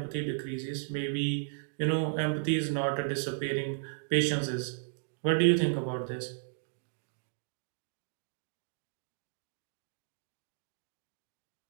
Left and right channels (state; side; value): silent; left; digital silence